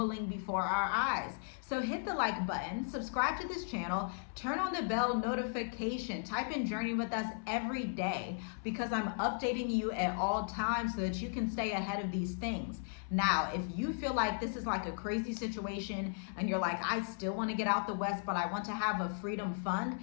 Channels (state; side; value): silent; right; 54 dB below the other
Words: before our eyes. So hit the like button, subscribe to this channel, turn on the bell notification, type in Journey with us every day because I'm updating you at all times so that you can stay ahead of these things. Now, if you feel like this is like a crazy situation and you're like, I still want to get out the West, but I want to have a freedom fund,